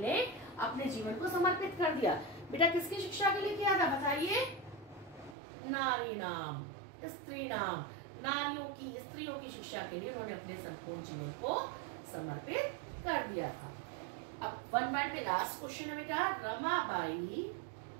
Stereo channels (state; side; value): drops out; left; at 5.4 s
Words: अपने जीवन को समर्पित कर दिया? बेटा किसकी शिक्षा के लिए किया था? बताइए। नारी नाम, स्त्री नाम, नारियों की, स्त्रियों की शिक्षा के लिए उन्होंने अपने संपूर्ण जीवन को समर्पित कर दिया था। अब वन वर्ड में लास्ट क्वेश्चन है बेटा, रमाबाई